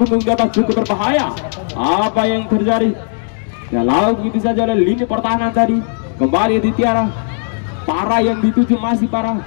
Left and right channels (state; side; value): silent; right; digital silence